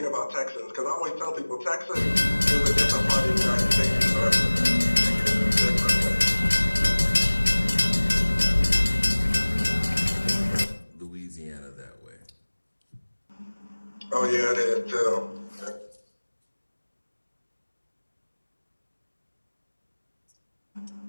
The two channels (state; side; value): inverted; both; correlation -1.00